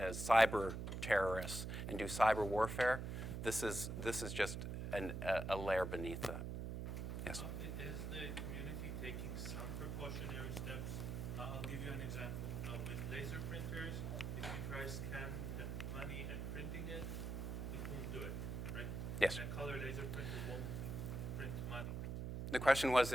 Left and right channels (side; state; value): right; noise; hum, 3 dB below the sound